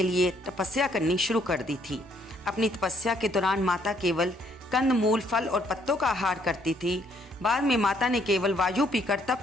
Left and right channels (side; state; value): both; normal; correlation 0.67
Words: लिए तपस्या करनी शुरू कर दी थी। अपनी तपस्या के दौरान माता केवल कंद मूल, फल और पत्तों का आहार करती थी। बाद में माता ने केवल वायु पीकर